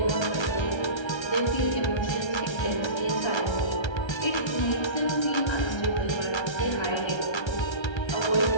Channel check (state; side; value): late; right; 1.3 ms